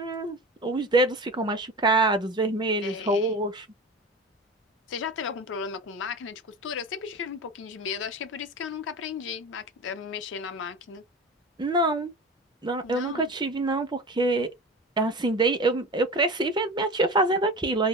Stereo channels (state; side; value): normal; both; correlation 0.31